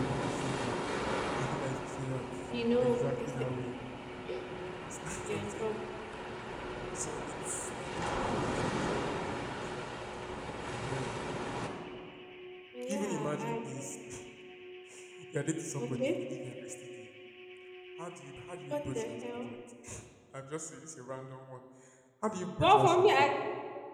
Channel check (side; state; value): both; identical; correlation 1.00